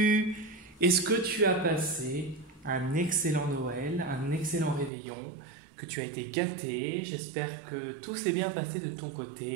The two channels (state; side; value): drops out; left; at 4.9 s